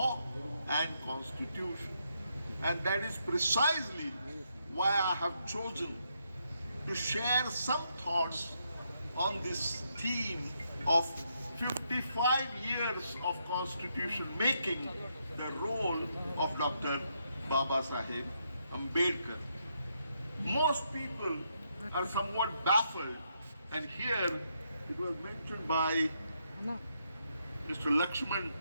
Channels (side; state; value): both; inverted; correlation -0.78